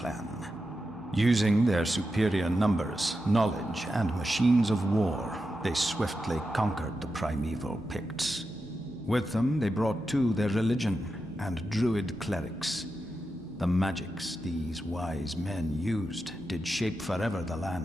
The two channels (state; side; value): normal; both; correlation 0.89